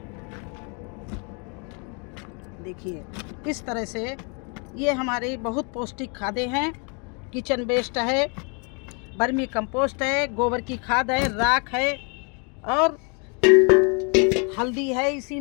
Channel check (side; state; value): right; quieter; 35.7 dB